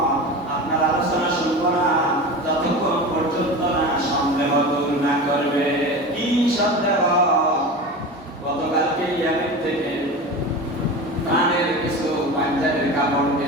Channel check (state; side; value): normal; both; correlation 0.29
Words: আপনার আলোচনা শুনবো না যতক্ষণ পর্যন্ত না সন্দেহ দূর না করবে। কি সন্দেহ? গতকালকে ইয়ামেন থেকে প্রাণের কিছু পাঞ্জাবের কাপড়